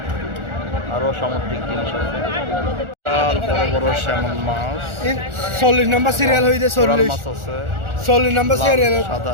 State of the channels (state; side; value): late; left; 1.4 ms